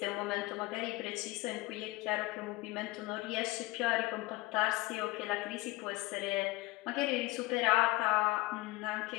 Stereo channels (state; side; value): quieter; right; 20.8 dB